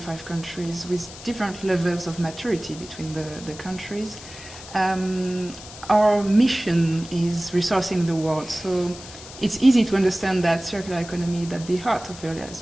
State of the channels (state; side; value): noise; left; hiss, 15 dB below the sound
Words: countries with different levels of maturity between the countries. Our mission is resourcing the world, so it's easy to understand that circular economy is at the heart of